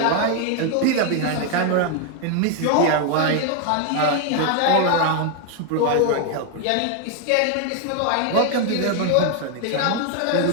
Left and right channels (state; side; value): different; both; correlation 0.01